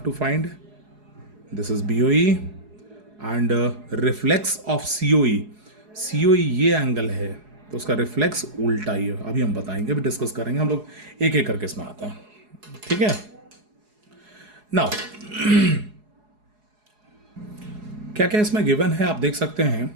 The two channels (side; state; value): left; late; 4.8 ms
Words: to find. This is BOE and reflex of COE. COE ये angle है तो उसका reflex उल्टा ही है. अभी हम बताएंगे, अभी डिस्कस करेंगे. हम लोग एक एक करके इसमें आते हैं. ठीक है. नाउ क्या क्या इसमें गिवन है आप देख सकते हैं.